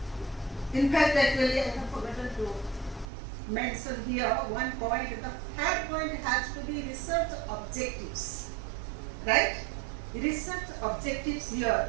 In fact, actually, I have forgotten to mention here one point. The third point has to be research objectives. Right? Research objectives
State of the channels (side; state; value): left; drops out; at 3.1 s